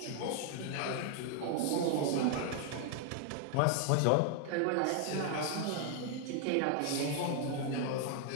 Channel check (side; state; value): both; different; correlation 0.00